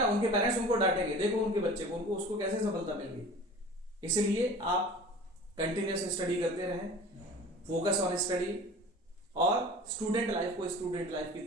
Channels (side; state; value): both; normal; correlation 0.41